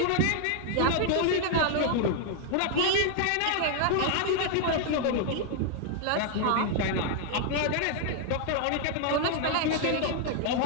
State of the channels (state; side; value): different; both; correlation 0.00